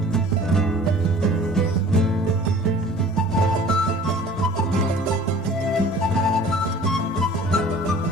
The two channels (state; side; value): normal; both; correlation 0.47